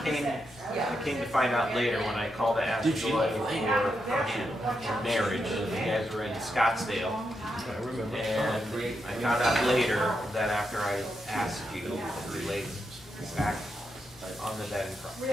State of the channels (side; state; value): both; normal; correlation 0.84